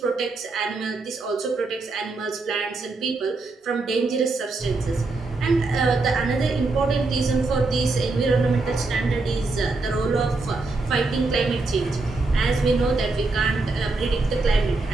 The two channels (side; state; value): left; quieter; 3.5 dB